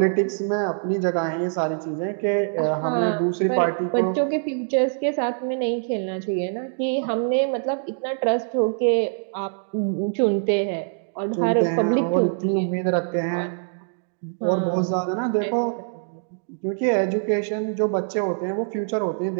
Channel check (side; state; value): left; silent; digital silence